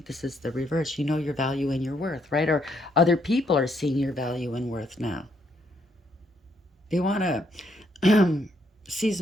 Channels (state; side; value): normal; both; correlation 0.73